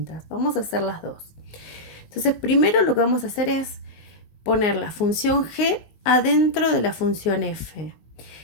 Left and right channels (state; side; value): late; right; 19 ms